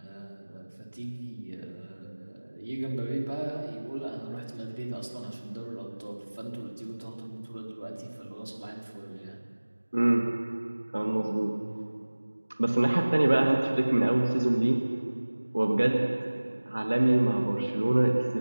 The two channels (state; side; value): inverted; both; correlation -1.00